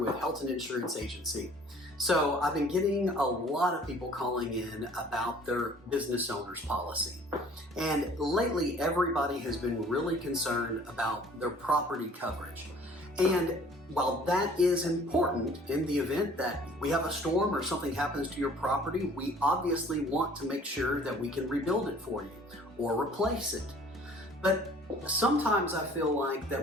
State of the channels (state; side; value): normal; both; correlation 0.53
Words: Helton Insurance Agency. So I've been getting a lot of people calling in about their business owner's policy. And lately everybody has been really concerned about their property coverage. And while that is important in the event that we have a storm or something happens to your property, we obviously want to make sure that we can rebuild it for you or replace it. But sometimes I feel like that